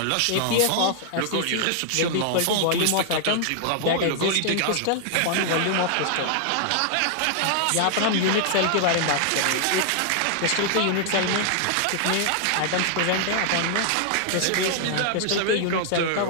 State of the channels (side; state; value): both; different; correlation 0.00